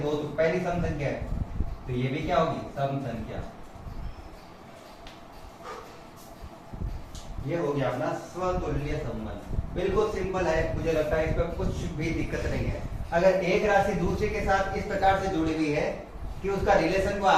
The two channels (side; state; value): both; identical; correlation 1.00